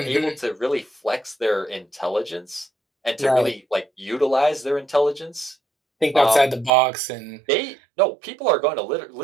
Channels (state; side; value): drops out; left; at 6.7 s